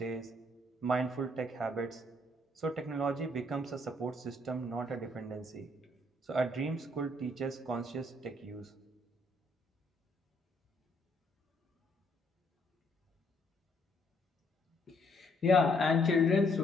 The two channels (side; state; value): both; normal; correlation 0.69